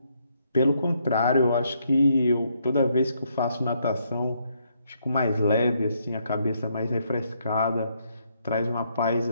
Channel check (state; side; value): inverted; both; correlation -0.74